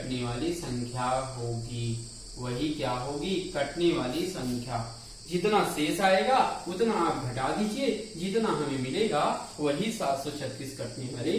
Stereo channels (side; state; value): both; identical; correlation 1.00